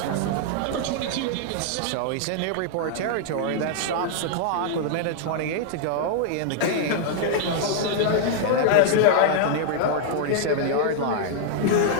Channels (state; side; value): different; both; correlation -0.01